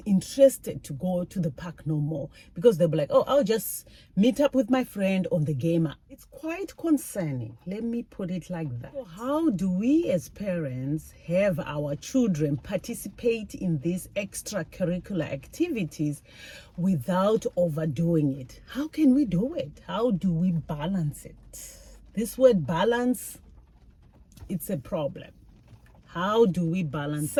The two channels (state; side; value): identical; both; correlation 1.00